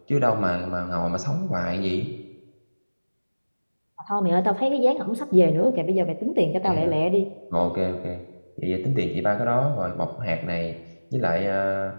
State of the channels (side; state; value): both; inverted; correlation -1.00